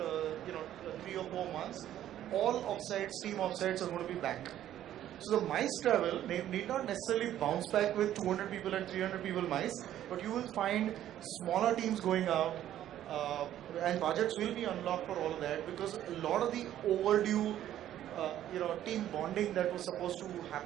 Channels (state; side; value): quieter; left; 12.0 dB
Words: or 4 months, all offsites, team offsites are going to be back. So the MICE travel need not necessarily bounce back with 200 people and 300 people MICE, but you will find smaller teams going out, and budgets will be unlocked for all of that, because a lot of the overdue team bonding that was supposed to